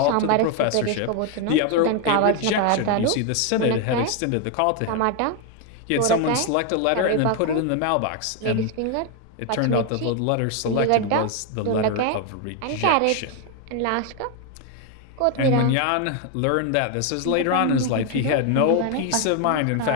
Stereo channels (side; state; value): both; different; correlation 0.01